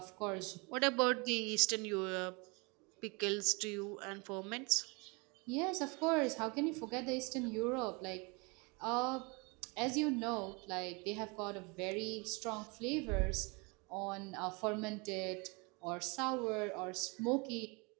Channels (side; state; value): left; quieter; 29.6 dB